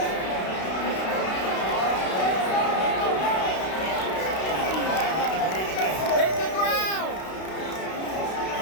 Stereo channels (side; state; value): right; late; 32 ms